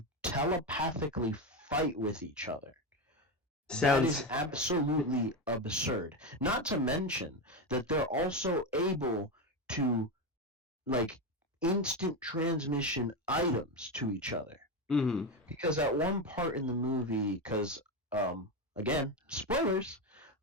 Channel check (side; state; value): both; normal; correlation 0.13